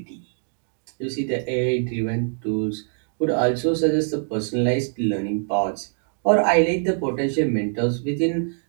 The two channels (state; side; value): silent; left; 59 dB below the other